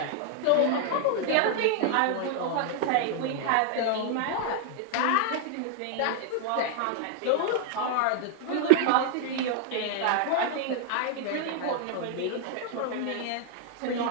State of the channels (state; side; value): different; both; correlation 0.00